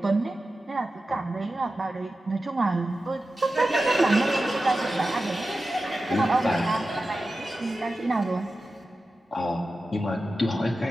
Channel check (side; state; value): both; normal; correlation 0.93